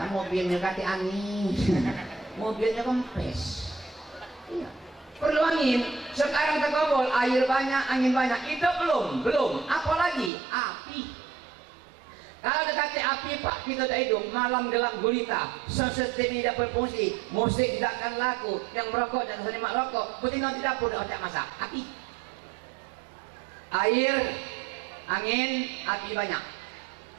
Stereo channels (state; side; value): drops out; left; at 10.3 s